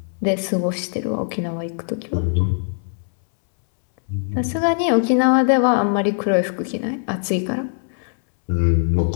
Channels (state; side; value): silent; right; 65 dB below the other